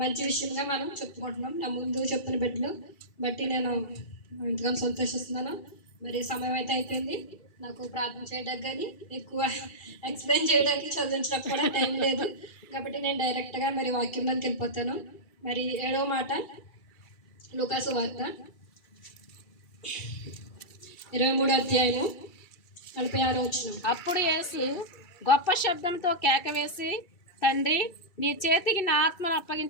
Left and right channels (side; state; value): right; late; 2.3 ms